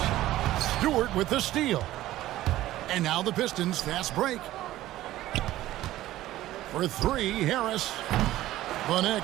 Stewart with the steal. And now the Pistons fast break. For three, Harris. The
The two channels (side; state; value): left; quieter; 15.1 dB